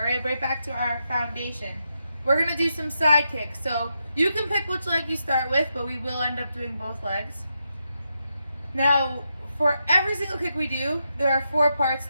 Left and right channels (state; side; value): inverted; both; correlation -0.85